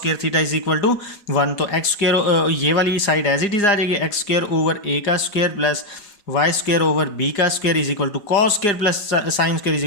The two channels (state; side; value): late; right; 4.9 ms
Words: theta is equal to 1। तो एक्स स्क्वायर ये वाली साइड एज इट इज आ जाएगी, एक्स स्क्वायर ओवर ए का square plus y square over b का square is equal to cos square plus sine square is